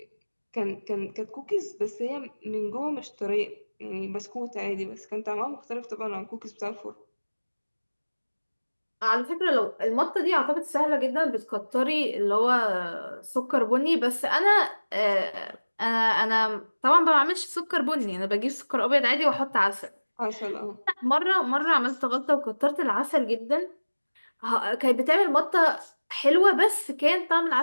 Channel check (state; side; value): inverted; both; correlation -1.00